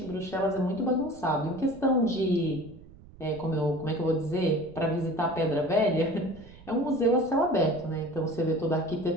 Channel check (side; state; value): right; noise; rumble, 21 dB below the sound